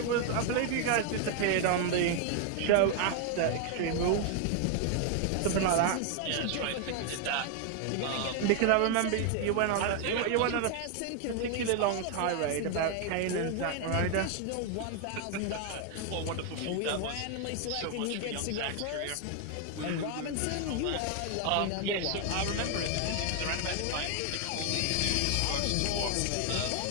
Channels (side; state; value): both; different; correlation 0.00